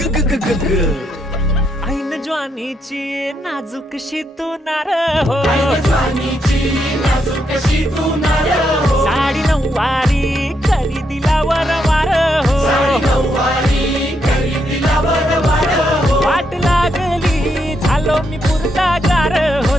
ग ग ग ग ऐन ज्वानीची नाजूकशी तू नार हो साडी नऊवारी करी दिला वरवार हो वाट लागली झालो मी पुरता गार हो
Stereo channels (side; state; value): both; normal; correlation 0.79